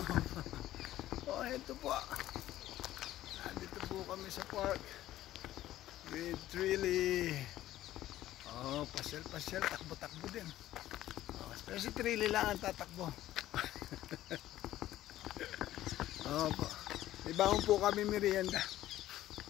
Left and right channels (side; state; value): right; quieter; 14.1 dB